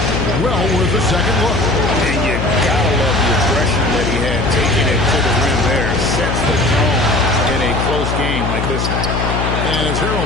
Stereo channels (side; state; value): left; noise; hum, 1 dB below the sound